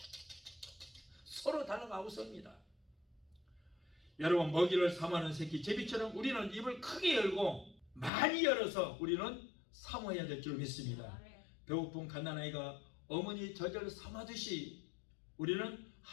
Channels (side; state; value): right; drops out; at 8.1 s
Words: 서로 달라가고 섭니다. 여러분, 먹이를 삼하는 새끼 제비처럼 우리는 입을 크게 열고 많이 열어서 우리는 사모해야 될 줄 믿습니다. 배고픈 갓난아이가 어머니 젖을 삼하듯이 우리는